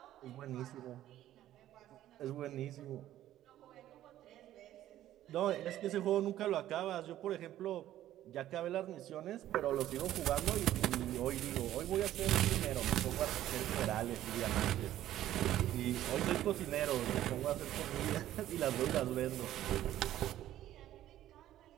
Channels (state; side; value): quieter; left; 13.0 dB